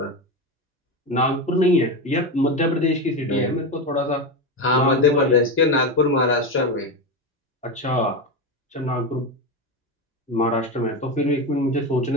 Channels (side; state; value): both; normal; correlation 0.16